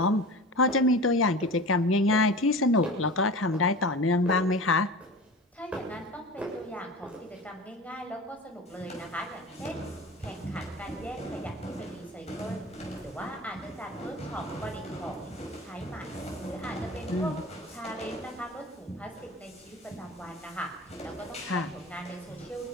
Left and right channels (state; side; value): normal; both; correlation 0.34